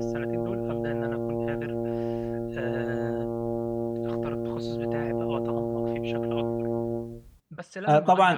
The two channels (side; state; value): both; identical; correlation 1.00